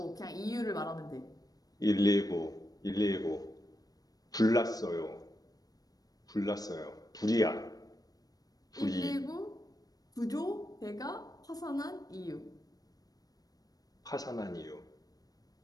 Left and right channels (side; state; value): right; late; 0.18 ms